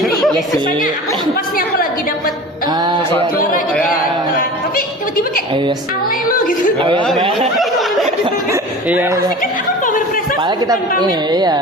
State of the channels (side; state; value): both; normal; correlation 0.37